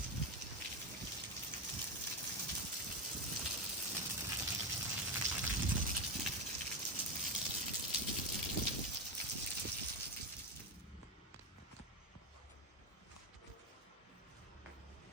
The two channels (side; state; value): both; normal; correlation 0.13